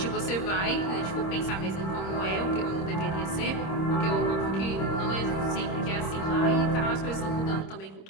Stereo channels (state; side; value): late; right; 26 ms